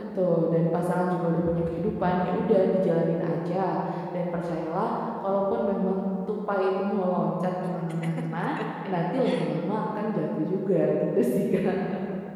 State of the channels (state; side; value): identical; both; correlation 1.00